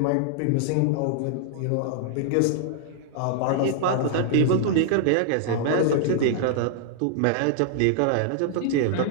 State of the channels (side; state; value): both; different; correlation -0.01